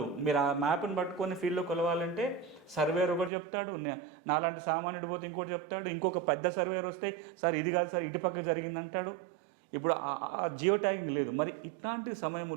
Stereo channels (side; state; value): left; drops out; at 3.3 s